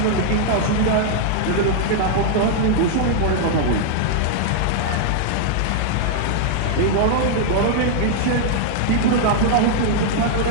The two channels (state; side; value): different; both; correlation -0.01